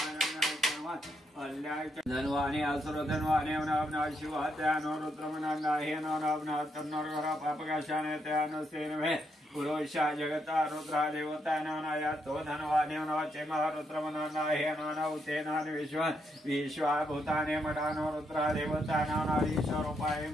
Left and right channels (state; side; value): normal; both; correlation 0.78